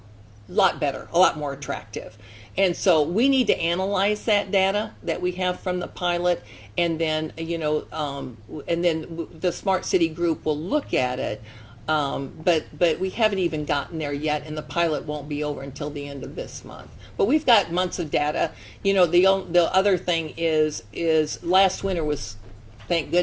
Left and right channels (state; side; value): identical; both; correlation 1.00